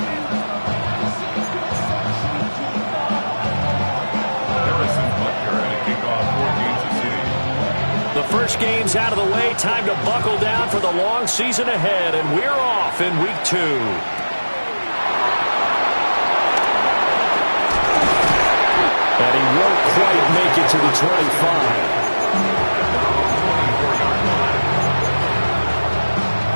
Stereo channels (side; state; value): both; inverted; correlation -1.00